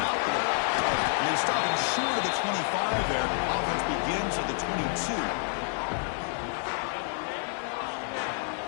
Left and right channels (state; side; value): silent; right; 59 dB below the other